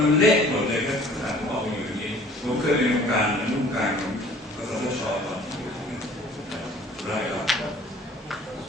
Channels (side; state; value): both; normal; correlation 0.51